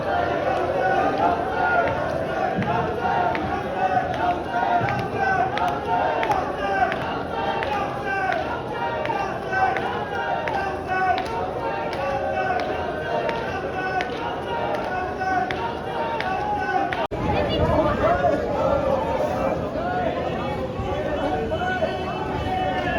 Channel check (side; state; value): both; identical; correlation 1.00